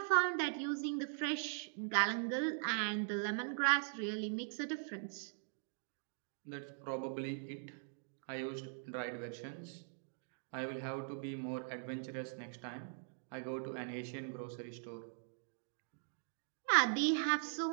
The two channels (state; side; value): silent; left; digital silence